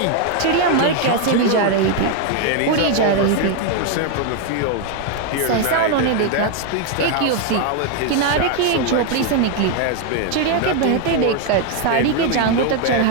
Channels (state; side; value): different; both; correlation 0.01